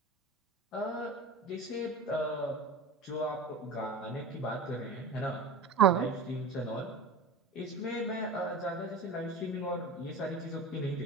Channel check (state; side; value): quieter; left; 3.4 dB